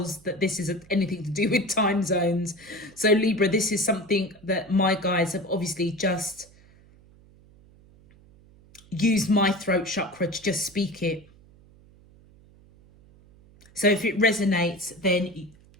that this is anything to do with time zones. So Libra, this is something that my guides have obviously just used my throat chakra to just speak it. So if it resonates, then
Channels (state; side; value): noise; right; hum, 26 dB below the sound